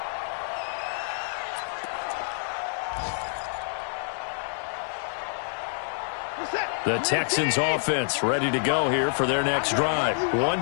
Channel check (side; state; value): right; silent; digital silence